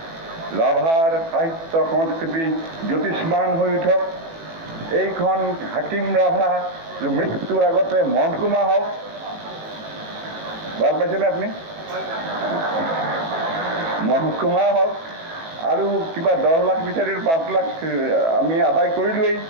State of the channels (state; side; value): late; left; 18 ms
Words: ৰাভাৰ সাহিত্য সংস্কৃতি জ্যোতিষ্মান হৈ উঠক। এইখন হাকিম ৰাভা মৃত্যুৰ আগতে মহকুমা হওক। ভাল পাইছেনে আপুনি? মহকুমা হওক। আৰু কিবা 10 লাখ বিচাৰি 5 লাখ আমি আদায় কৰিলোৱেই,